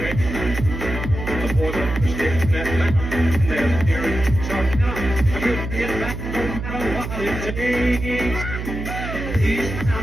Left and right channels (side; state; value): right; noise; hum, 6 dB below the sound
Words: The boys up the steps in that mountain, and they're steering, starting out. I couldn't get back no matter what it takes.